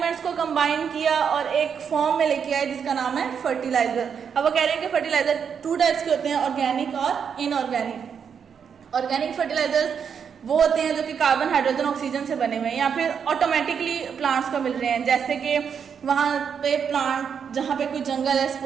को कंबाइन किया और एक फॉर्म में लेके आए जिसका नाम है फर्टिलाइजर। अब वो कह रहे हैं कि फर्टिलाइजर 2 टाइप्स के होते हैं, ऑर्गेनिक और इनऑर्गेनिक। ऑर्गेनिक फर्टिलाइजर्स वो होते हैं जो कि कार्बन, हाइड्रोजन, ऑक्सीजन से बने हुए हैं या फिर ऑटोमेटिकली प्लांट्स को मिल रहे हैं। जैसे कि वहाँ पे प्लांट जहाँ पे कोई जंगल है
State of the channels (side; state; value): left; quieter; 7.1 dB